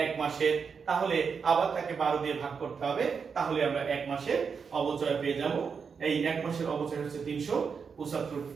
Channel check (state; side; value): quieter; left; 5.9 dB